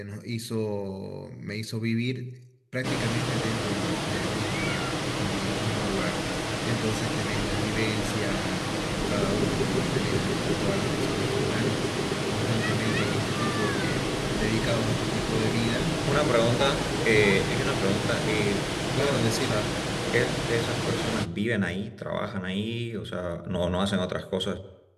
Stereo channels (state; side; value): identical; both; correlation 1.00